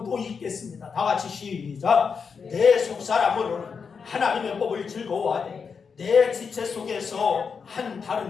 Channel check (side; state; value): right; quieter; 5.8 dB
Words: 또 읽겠습니다. 다 같이 시작. 내 속사람으로는 하나님의 법을 즐거워하되 내 지체 속에서 한